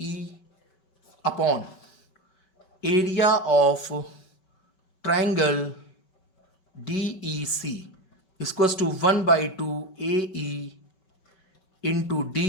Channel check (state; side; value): late; right; 5.3 ms